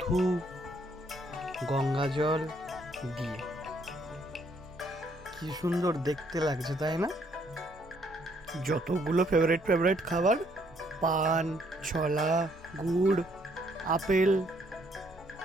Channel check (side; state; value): both; normal; correlation 0.68